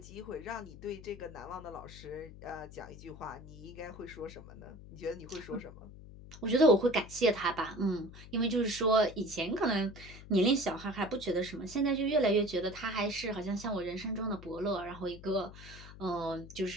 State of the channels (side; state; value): left; noise; hum, 16 dB below the sound